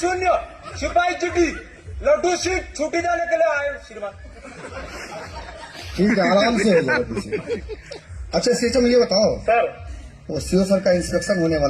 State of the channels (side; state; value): both; identical; correlation 1.00